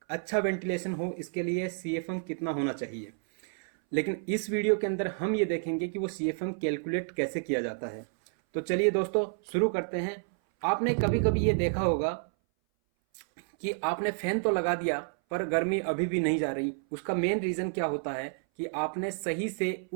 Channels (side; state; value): left; silent; 58 dB below the other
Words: अच्छा वेंटिलेशन हो, इसके लिए CFM कितना होना चाहिए। लेकिन इस वीडियो के अंदर हम ये देखेंगे कि वो CFM कैलकुलेट कैसे किया जाता है। तो चलिए दोस्तों शुरू करते हैं। आपने कभी कभी ये देखा होगा कि आपने फैन तो लगा दिया पर गर्मी अभी भी नहीं जा रही। उसका मेन रीजन क्या होता है कि आपने सही से